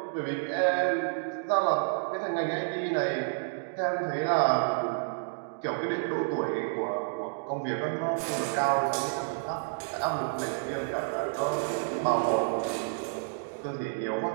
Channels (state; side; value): silent; left; digital silence